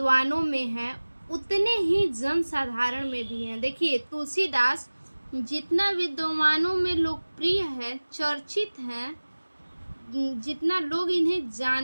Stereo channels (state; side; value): inverted; both; correlation -1.00